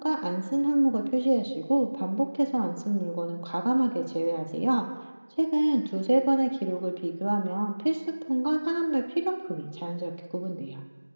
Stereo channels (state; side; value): inverted; both; correlation -1.00